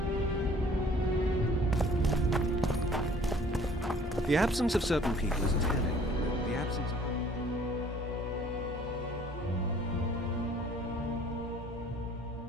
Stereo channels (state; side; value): normal; both; correlation 0.54